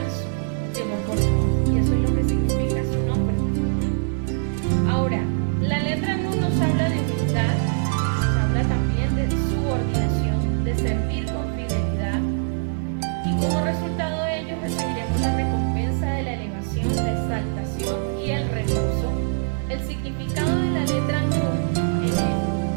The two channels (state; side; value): silent; left; digital silence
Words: llegó por Noah, y eso es lo que significa su nombre. Ahora, la letra Nun nos habla de humildad, nos habla también de subordinación, de servir con fidelidad, y como resultado de ello recibiremos la recompensa de la elevación, la exaltación y el reposo. El significado de la letra Nun